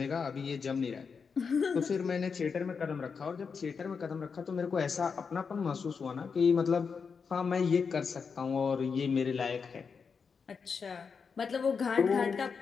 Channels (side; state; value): right; quieter; 5.7 dB